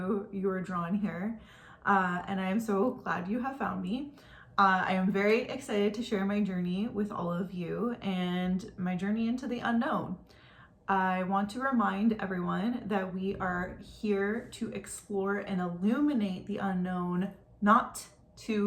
you are drawn here. And I am so glad you have found me. I am very excited to share my journey with all of you and my journey into the unknown. I want to remind everyone that we are here to explore and illuminate the unknown, not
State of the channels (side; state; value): both; identical; correlation 1.00